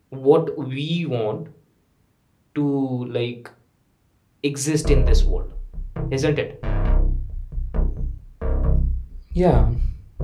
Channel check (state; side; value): identical; both; correlation 1.00